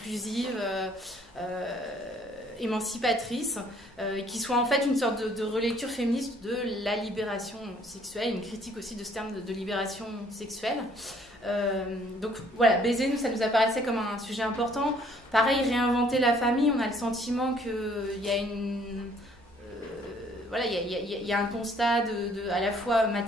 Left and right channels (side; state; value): both; normal; correlation 0.61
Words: émancipatrice, qui soit en fait une sorte de relecture féministe de la libération sexuelle, une critique aussi de ce terme de libération sexuelle. Donc voilà, baiser, nous, ça nous apparaissait comme un sujet important. Pareil, réinventer la famille, on a le sentiment qu'il y a il y a un constat à la fois